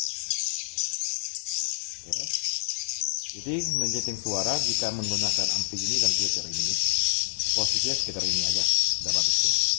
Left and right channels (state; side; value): silent; right; 60 dB below the other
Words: Oke. Jadi menyeting suara jika menggunakan ampli ini dan Twitter ini, posisinya sekitar ini aja, sudah bagus ya.